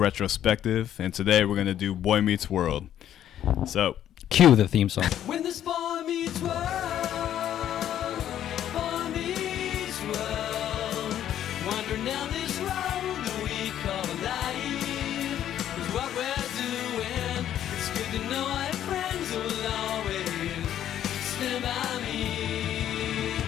and today we're gonna do Boy Meets World. So, cue the theme song. When this boy meets world, boy meets world, wandering down this road that we call life is what we're doing. It's good to know I have friends who will always stand by me.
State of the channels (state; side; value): quieter; right; 11.0 dB